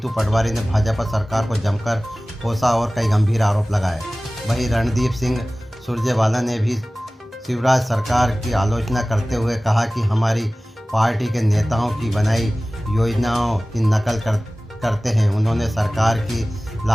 पटवारी ने भाजपा सरकार को जमकर कोसा और कई गंभीर आरोप लगाए। वहीं रणदीप सिंह सुरजेवाला ने भी शिवराज सरकार की आलोचना करते हुए कहा कि हमारी पार्टी के नेताओं की बनाई योजनाओं की नकल करते हैं। उन्होंने सरकार की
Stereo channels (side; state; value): both; normal; correlation 0.98